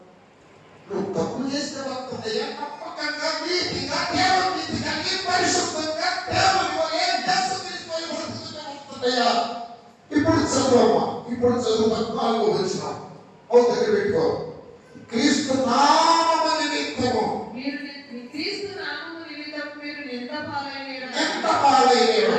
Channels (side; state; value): both; identical; correlation 1.00